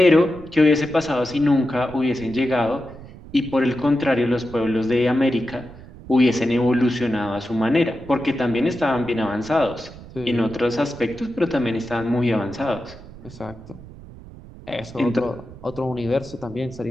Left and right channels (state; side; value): noise; right; rumble, 17 dB below the sound